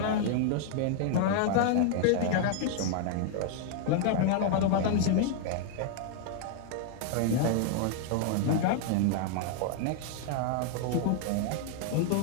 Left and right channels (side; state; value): both; different; correlation 0.00